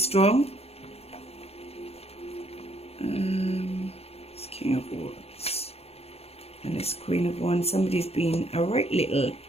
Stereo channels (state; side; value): late; right; 0.29 ms